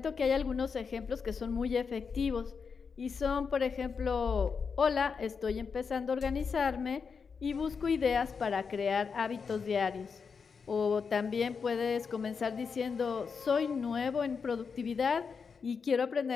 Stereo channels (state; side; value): quieter; right; 5.7 dB